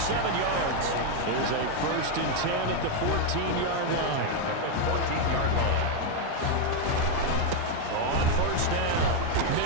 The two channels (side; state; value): both; different; correlation 0.01